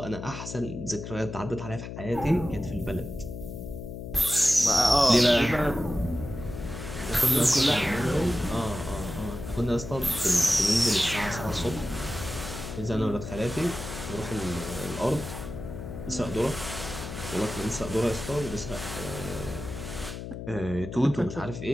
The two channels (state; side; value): noise; left; hum, 8 dB below the sound